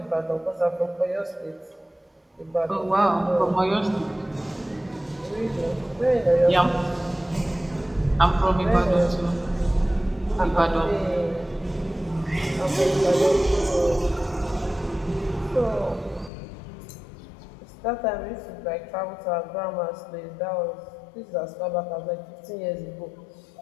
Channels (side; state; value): right; drops out; at 16.3 s